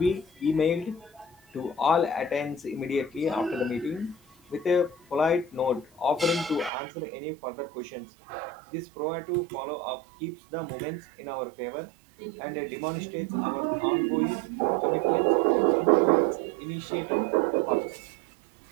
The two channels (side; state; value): left; drops out; at 6.7 s